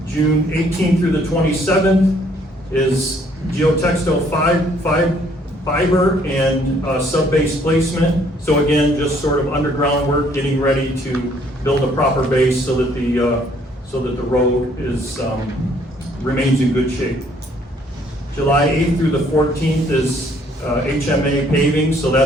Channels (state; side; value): normal; both; correlation 0.63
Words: June 18th through the 27th is geotextile fiber and sub-base placement. So again, just sort of underground work, getting ready to build a proper base so that the road is remains in good shape. July 8th through the 14th is HMA paving, so